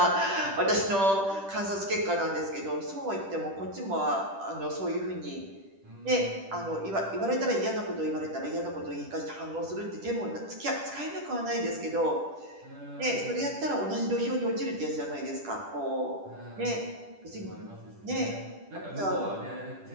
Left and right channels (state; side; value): late; left; 10 ms